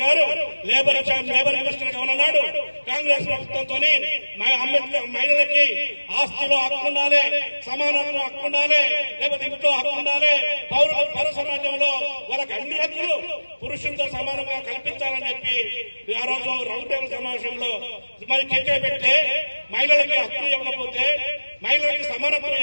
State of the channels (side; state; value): both; inverted; correlation -1.00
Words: గారు లేబర్ మినిస్టర్ గా ఉన్నాడు. కాంగ్రెస్ ప్రభుత్వంతో మహిళలకి ఆస్తిలో హక్కు ఉండాలి, సమానత్వం హక్కు ఉండాలి, లేకపోతే ఇంట్లో హక్కు ఉండాలి, పౌర సమాజంలో వాళ్ళకి అన్ని హక్కులు పురుషులతో సమానంగా కల్పించాలని చెప్పి ఆ రోజు రౌండ్ టేబుల్ సమావేశంలో మరి చర్చ పెడితే మహిళలకి హక్కులు ఇవ్వకపోతే, మహిళలకి సమానత్వం